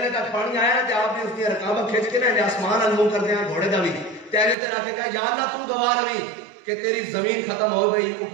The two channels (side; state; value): left; drops out; at 4.5 s